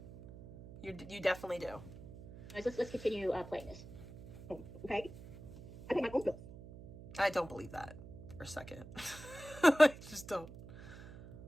You definitely do. Let's continue playing this. Oh, okay. I pay my own bills. I don't believe that for a second. I just don't.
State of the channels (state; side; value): noise; right; hum, 15 dB below the sound